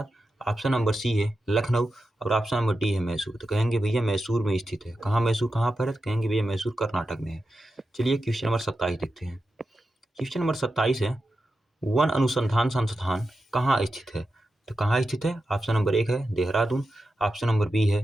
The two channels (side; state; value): both; normal; correlation 0.90